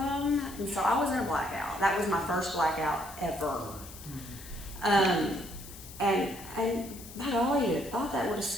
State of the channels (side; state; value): left; noise; hiss, 15 dB below the sound